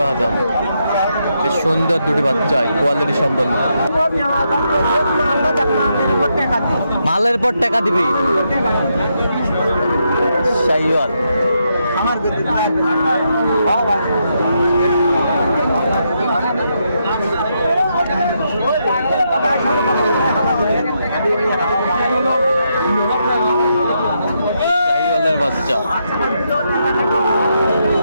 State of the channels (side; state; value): both; inverted; correlation -0.80